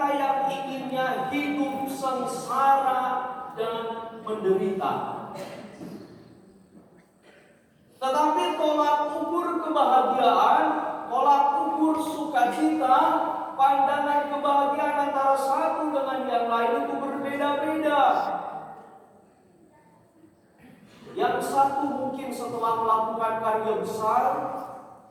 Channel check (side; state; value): both; identical; correlation 1.00